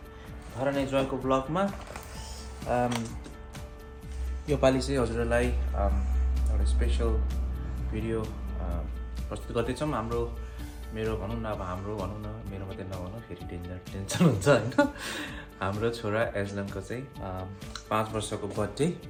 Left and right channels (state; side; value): identical; both; correlation 1.00